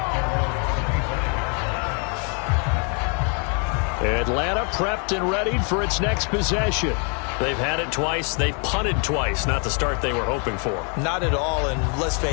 Atlanta prepped and ready for its next possession. They've had it twice. They've punted twice. Not the start they were hoping for. Not at all, and let's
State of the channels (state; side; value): quieter; right; 37.5 dB